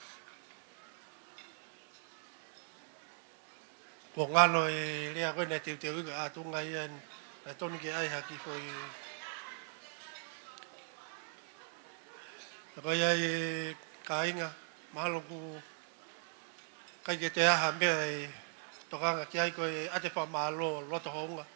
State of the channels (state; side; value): silent; left; 52 dB below the other